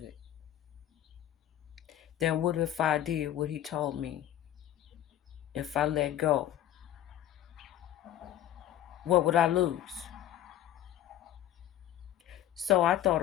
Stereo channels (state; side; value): quieter; right; 11.9 dB